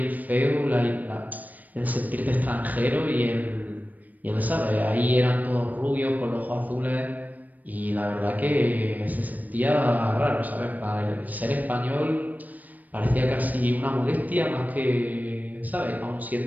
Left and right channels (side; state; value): left; late; 0.081 ms